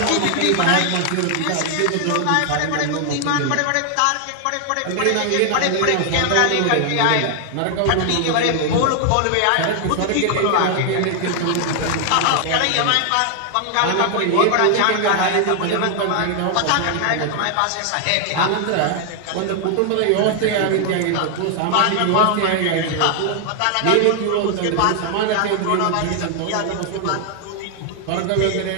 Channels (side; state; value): both; different; correlation 0.00